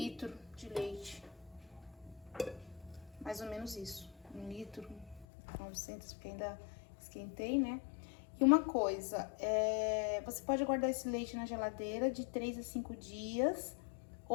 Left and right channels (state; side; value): drops out; right; at 5.2 s